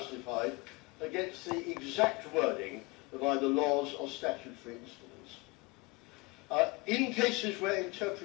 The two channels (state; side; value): quieter; right; 25.4 dB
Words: against the exact wording of either laws or statutory instruments. In cases where